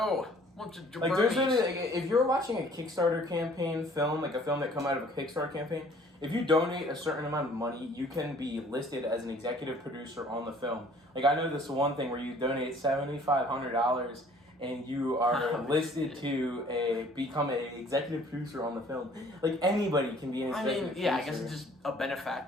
Bunch of There's really, if you're watching a Kickstarter campaign film, a film that come out of a Kickstarter campaign, if you donate a certain amount of money, you can be listed as an executive producer on the film. I know this one thing where you donate $7,500 and you are listed to become an executive producer on the film. Anybody can be an executive producer. I guess it's just a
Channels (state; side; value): normal; both; correlation 0.55